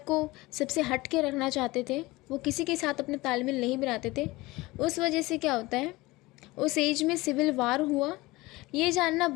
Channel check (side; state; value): right; quieter; 20.9 dB